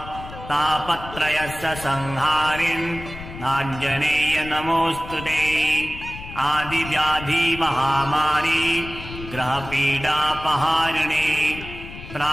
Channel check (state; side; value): noise; left; rumble, 13 dB below the sound